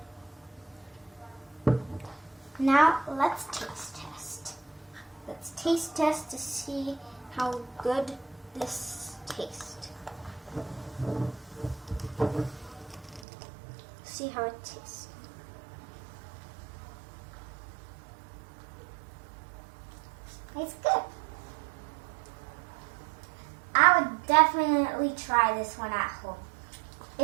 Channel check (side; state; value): left; drops out; at 13.2 s